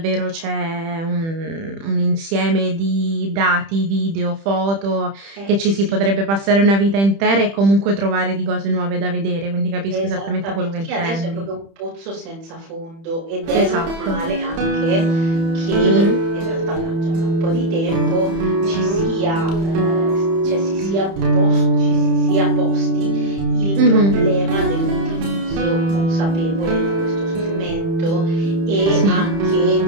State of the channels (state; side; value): late; left; 30 ms